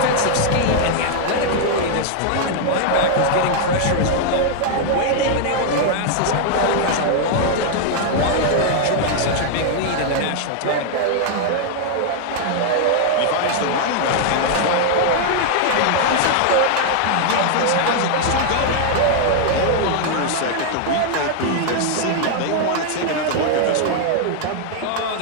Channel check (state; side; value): different; both; correlation 0.00